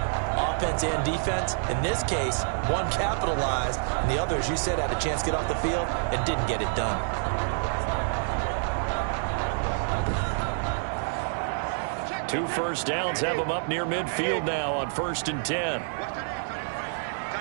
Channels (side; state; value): left; silent; 60 dB below the other